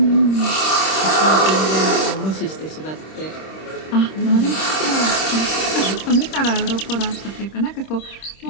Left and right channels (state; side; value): late; right; 26 ms